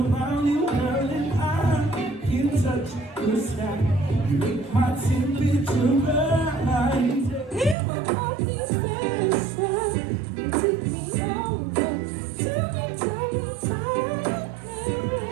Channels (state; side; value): drops out; left; at 7.8 s